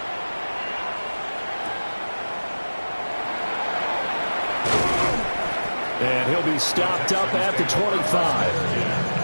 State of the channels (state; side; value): inverted; both; correlation -1.00